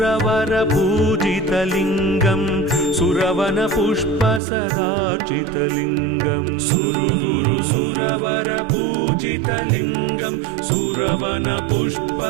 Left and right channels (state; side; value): drops out; left; at 4.4 s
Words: पूजितलिङ्गं सुरवन पुष्प सदाचितलिङ्गम् सुरगुरु सुरवर पूजितलिङ्गं सुरवन पुष्प